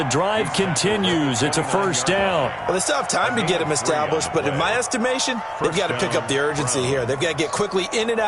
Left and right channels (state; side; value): identical; both; correlation 1.00